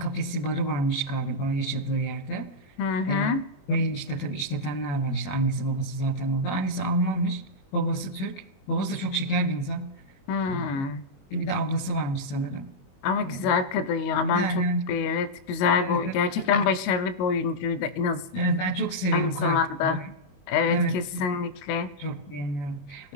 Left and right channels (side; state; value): right; late; 21 ms